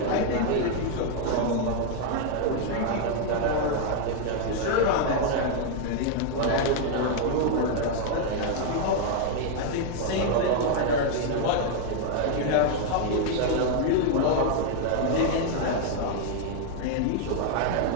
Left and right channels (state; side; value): different; both; correlation 0.00